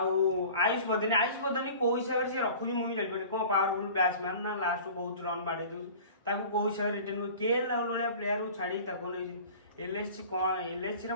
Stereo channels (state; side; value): inverted; both; correlation -0.42